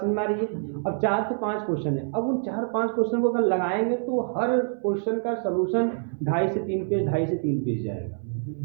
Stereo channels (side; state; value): left; silent; 61 dB below the other